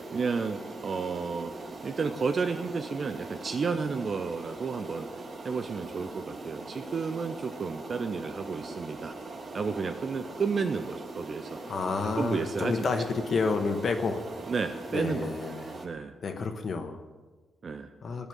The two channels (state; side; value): normal; both; correlation 0.82